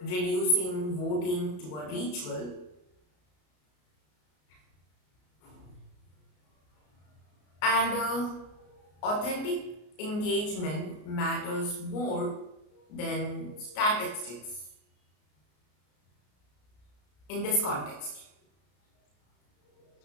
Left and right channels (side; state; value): right; late; 33 ms